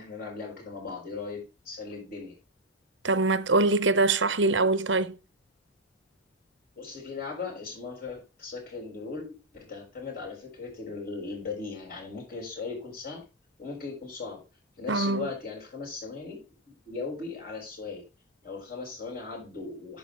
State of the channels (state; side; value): normal; both; correlation -0.09